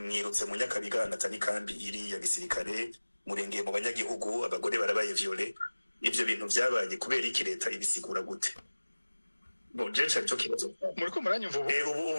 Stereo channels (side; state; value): both; inverted; correlation -1.00